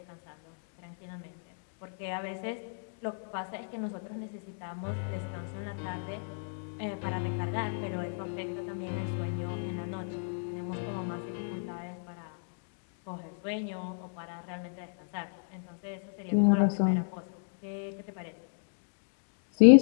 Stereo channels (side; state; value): right; silent; digital silence